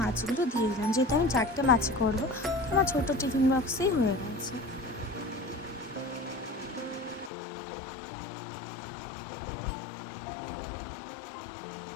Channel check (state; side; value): drops out; right; at 7.3 s